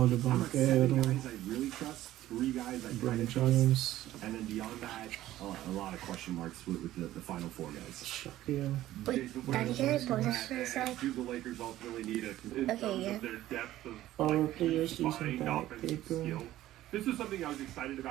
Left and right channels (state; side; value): quieter; left; 14.4 dB